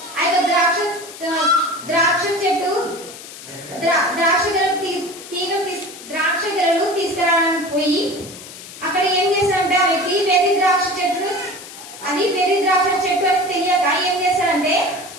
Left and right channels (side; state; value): left; noise; hiss, 15 dB below the sound